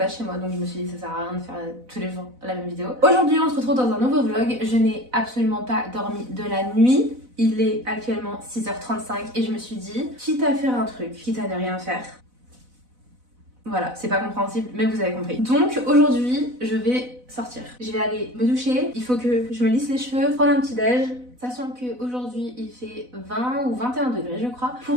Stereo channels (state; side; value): late; left; 4.0 ms